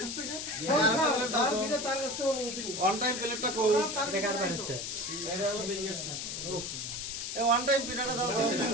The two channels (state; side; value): noise; left; hiss, 5 dB below the sound